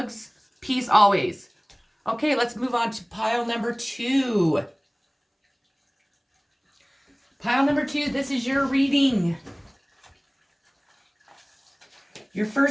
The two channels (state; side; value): identical; both; correlation 1.00